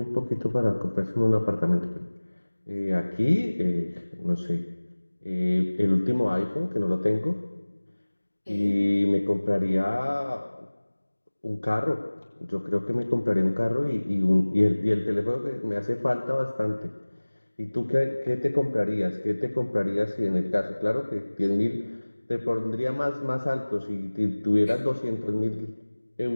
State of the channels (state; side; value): inverted; both; correlation -1.00